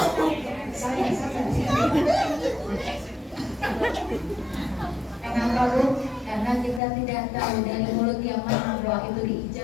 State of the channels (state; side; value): drops out; right; at 6.8 s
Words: Kenapa bu? Karena kita tidak tahu dari mulut yang mana doa itu